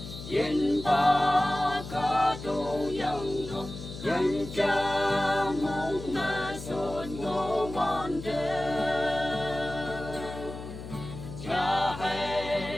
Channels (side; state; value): left; noise; hum, 11 dB below the sound